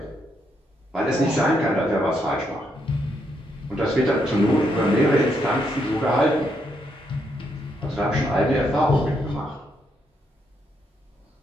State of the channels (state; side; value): normal; both; correlation 0.77